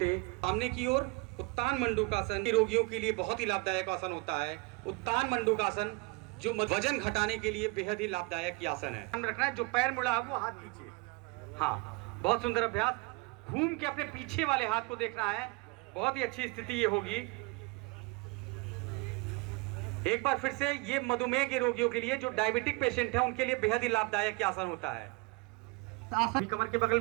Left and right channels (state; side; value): quieter; left; 27.1 dB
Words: सामने की ओर। उत्तान मंडूकासन रोगियों के लिए बहुत ही लाभदायक आसन होता है। उत्तान मंडूकासन जो वजन घटाने के लिए बेहद ही लाभदायक आसन है। ध्यान रखना है, जो पैर मुड़ा है वो हाथ पीछे। हाँ, बहुत सुंदर अभ्यास। घूम के अपने पीछे वाले हाथ को देखना है, बहुत ही अच्छी स्थिति ये होगी। एक बार फिर से, ये मधुमेह के रोगियों के लिए, जो डायबिटिक पेशेंट है उनके लिए बेहद ही लाभदायक आसन होता है। आसन कमर के बगल